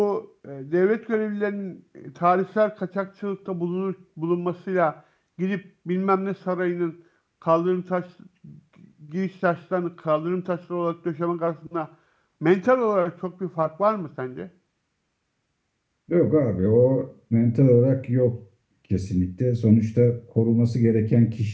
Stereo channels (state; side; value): identical; both; correlation 1.00